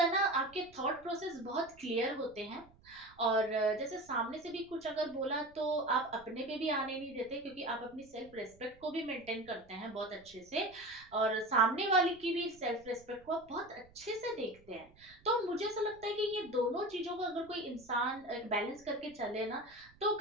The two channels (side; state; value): right; noise; rumble, 26 dB below the sound